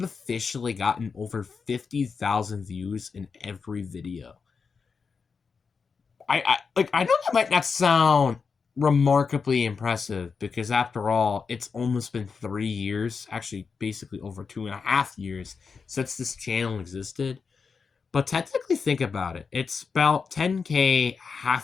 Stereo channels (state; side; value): quieter; right; 5.3 dB